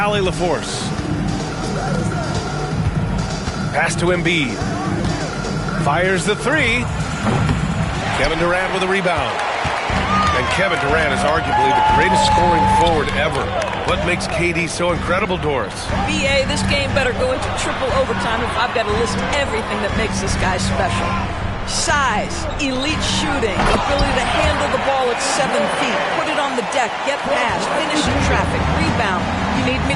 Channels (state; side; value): identical; both; correlation 1.00